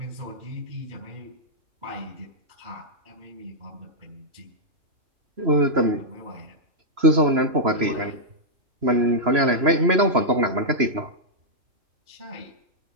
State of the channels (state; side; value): late; left; 3.0 ms